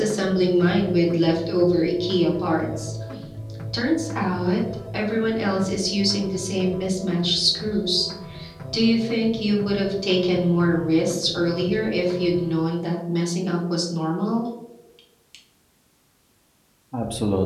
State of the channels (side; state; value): both; identical; correlation 1.00